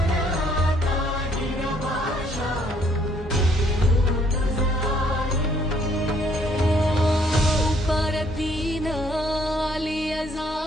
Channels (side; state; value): both; normal; correlation 0.65